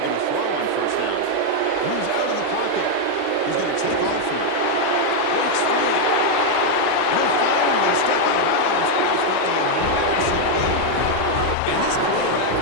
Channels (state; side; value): different; both; correlation 0.01